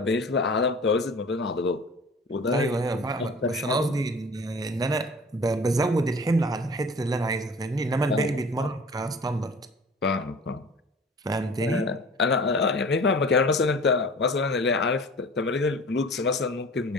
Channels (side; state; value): both; normal; correlation 0.43